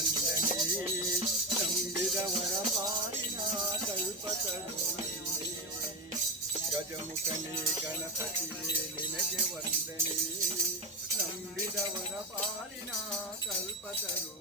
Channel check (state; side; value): normal; both; correlation 0.14